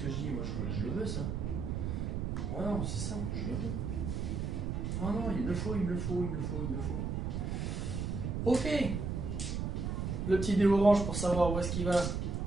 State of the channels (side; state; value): right; noise; rumble, 2 dB below the sound